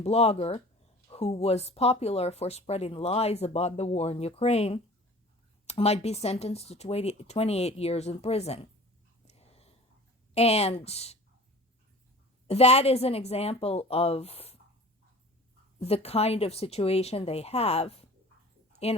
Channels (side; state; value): both; normal; correlation 0.43